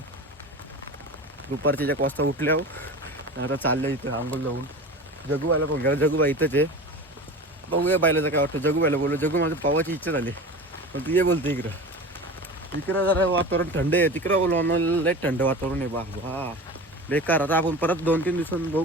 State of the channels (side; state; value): both; normal; correlation 0.33